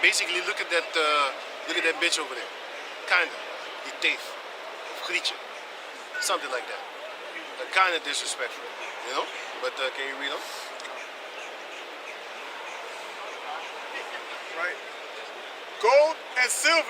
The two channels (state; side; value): identical; both; correlation 1.00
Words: Basically, look at that bitch over there. Kinda. Die teef. Of Grietje. Something like that. Kind of disrespectful, you know? But can you read on? Right. Gold and